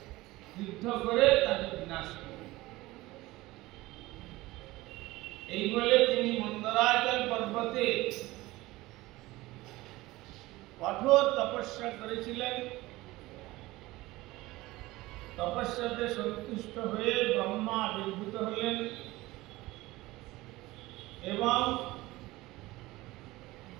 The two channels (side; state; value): left; quieter; 19.2 dB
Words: যুদ্ধ করে তাকে বিনাশ করি। এই বলে তিনি মন্দরাচল পর্বতে কঠোর তপস্যা করেছিলেন। তপস্যাতে সন্তুষ্ট হয়ে ব্রহ্মা আবির্ভূত হলেন এবং